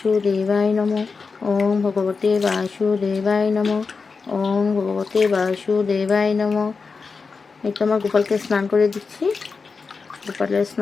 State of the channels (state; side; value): quieter; right; 4.8 dB